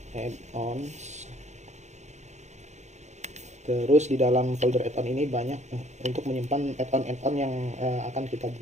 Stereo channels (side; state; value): left; late; 0.33 ms